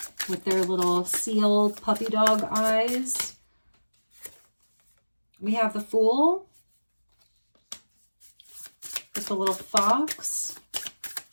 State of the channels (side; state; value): both; inverted; correlation -1.00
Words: with their little seal puppy dog eyes. We have the Fool with the little fox,